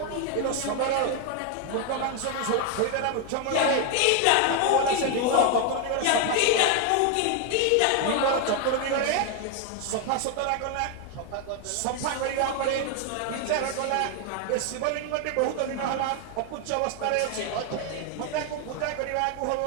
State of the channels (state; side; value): different; both; correlation 0.01